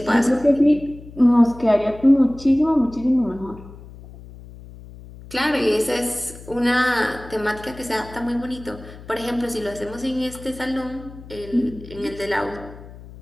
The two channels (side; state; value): left; noise; hum, 17 dB below the sound